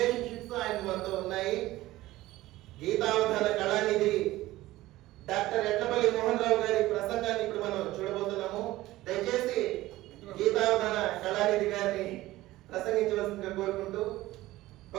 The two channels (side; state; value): left; quieter; 17.0 dB